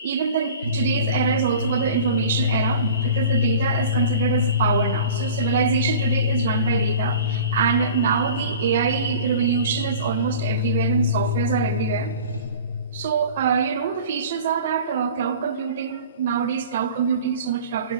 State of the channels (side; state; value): both; inverted; correlation -0.40